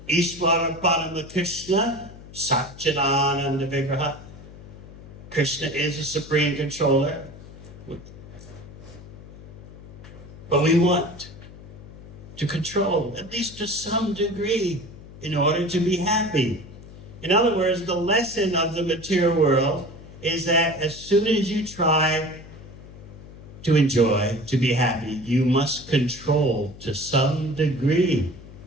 Ishvara Parama Krishna, Satchidananda Vigraha. Krishna is a supreme controller. But we want to control, at least to some degree, in order to be happy. In other words, the lesson of the material world is that as soon as you try to enjoy, to be happy, you must control to some degree.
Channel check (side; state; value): left; noise; hum, 17 dB below the sound